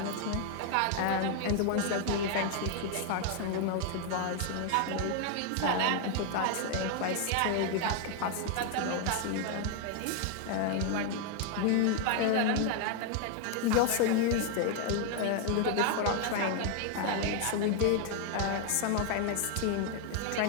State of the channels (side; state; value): both; different; correlation 0.00